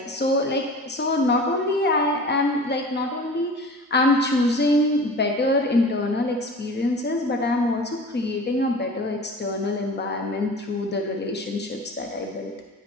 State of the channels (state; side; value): normal; both; correlation 0.39